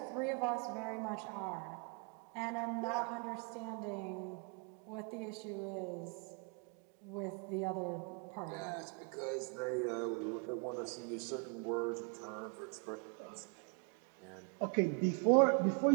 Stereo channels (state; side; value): quieter; left; 35.8 dB